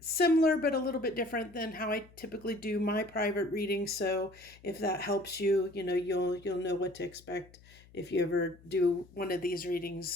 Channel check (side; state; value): left; noise; hum, 25 dB below the sound